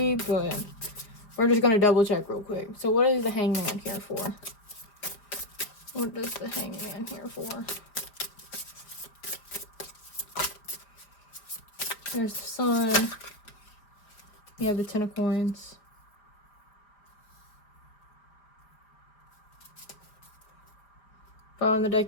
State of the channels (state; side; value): late; right; 4.7 ms